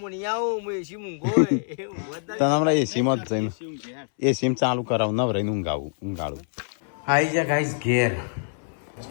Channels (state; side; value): silent; right; 62 dB below the other